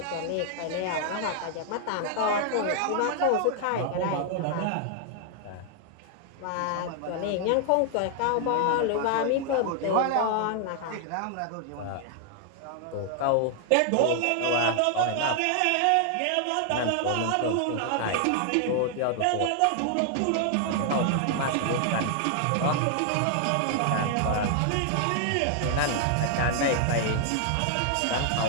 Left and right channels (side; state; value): both; different; correlation 0.00